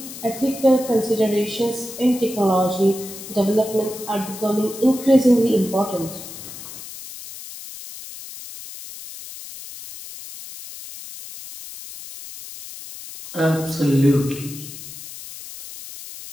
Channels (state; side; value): noise; left; hiss, 13 dB below the sound